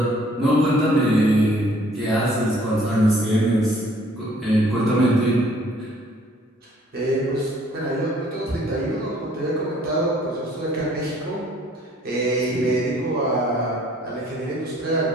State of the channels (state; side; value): normal; both; correlation 0.59